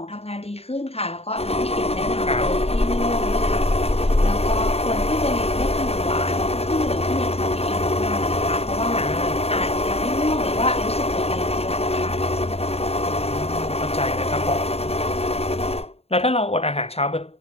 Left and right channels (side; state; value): right; late; 0.29 ms